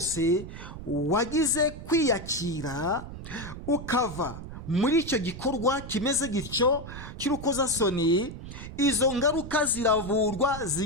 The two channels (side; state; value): right; noise; rumble, 11 dB below the sound